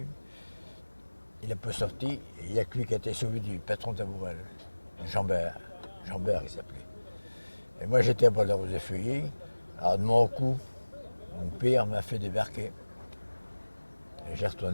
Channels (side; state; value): both; inverted; correlation -1.00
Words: Il n'a pas sorti, et il n'y a que lui qui a été sauvé du patron Taboural. Jambert il s'appelait. Et moi j'étais à Bois-de-Rose-des-Feuillets. Alors de mon coup, mon père m'a fait débarquer. Et j'ai